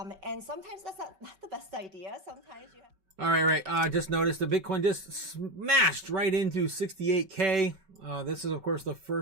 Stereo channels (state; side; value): late; left; 5.2 ms